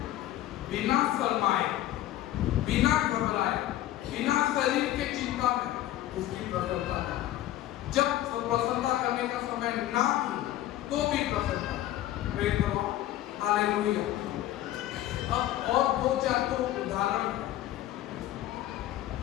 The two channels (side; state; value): right; quieter; 14.0 dB